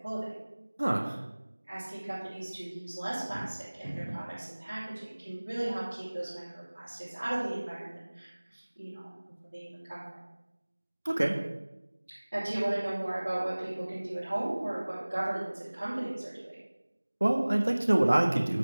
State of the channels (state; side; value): inverted; both; correlation -1.00